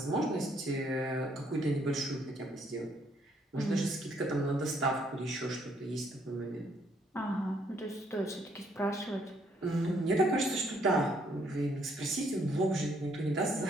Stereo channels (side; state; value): both; normal; correlation 0.68